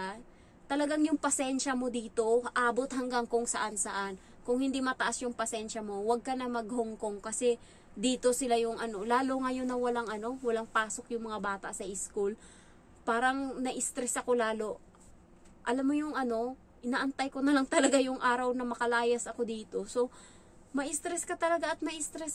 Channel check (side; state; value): both; identical; correlation 1.00